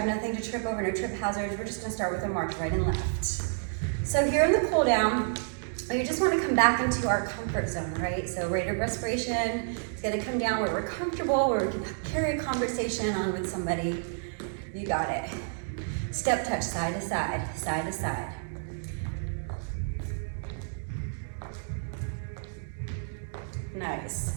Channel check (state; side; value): silent; left; digital silence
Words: nothing to trip over, no trip hazards. We're just gonna start with a march right and left. So here in the cool down, you just wanna come back into our comfort zone, right? So rate of respiration, it's gonna come down where we're comfortable, where we can carry a conversation on with somebody. You got it. Step touch, side to side, side to side. Nice.